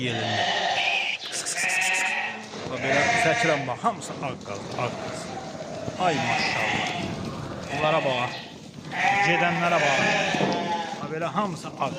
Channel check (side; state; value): both; identical; correlation 1.00